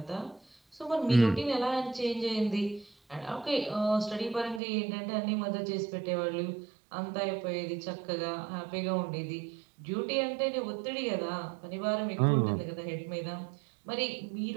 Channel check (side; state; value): left; drops out; at 4.6 s